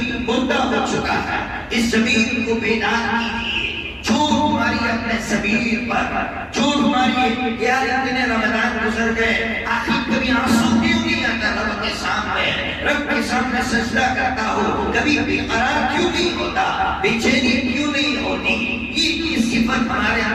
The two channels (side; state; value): both; identical; correlation 1.00